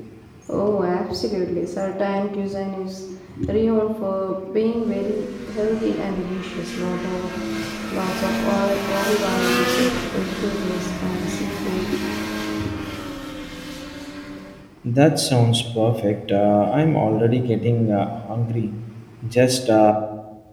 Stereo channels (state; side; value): identical; both; correlation 1.00